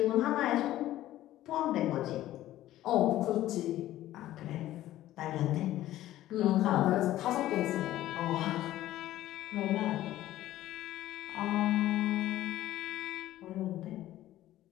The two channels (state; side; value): quieter; right; 14.3 dB